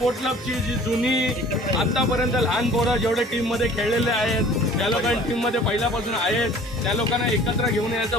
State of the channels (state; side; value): normal; both; correlation 0.49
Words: क्लबची जी जुनी आतापर्यंत लहान पोरं जेवढे टीम मध्ये खेळलेले आहेत, ज्या लोकांनी टीम मध्ये पहिल्यापासून आहेत, त्या लोकांना एकत्र घेऊन यायचा